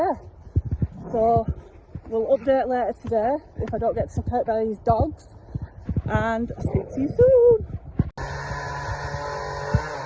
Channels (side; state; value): both; identical; correlation 1.00